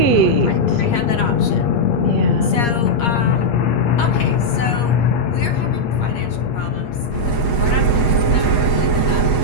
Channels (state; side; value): late; right; 8.5 ms